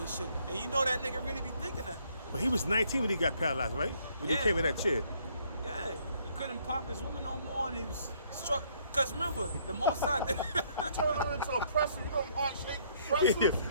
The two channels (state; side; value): inverted; both; correlation -0.66